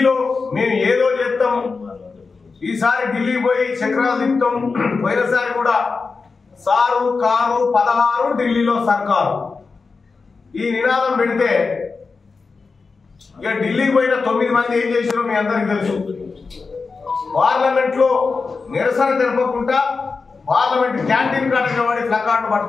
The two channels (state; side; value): quieter; right; 4.5 dB